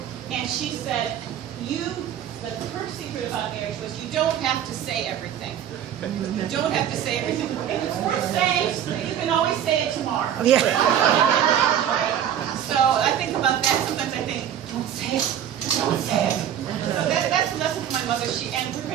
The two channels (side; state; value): left; quieter; 9.8 dB